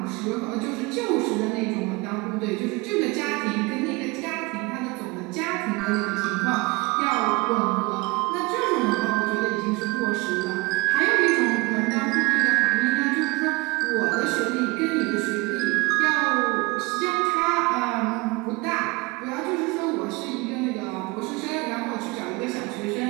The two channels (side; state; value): left; quieter; 24.9 dB